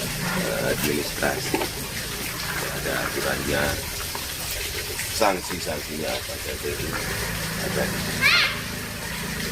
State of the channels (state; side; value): identical; both; correlation 1.00